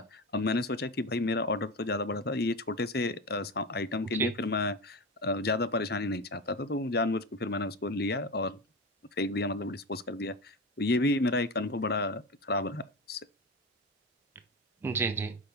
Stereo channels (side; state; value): both; normal; correlation 0.22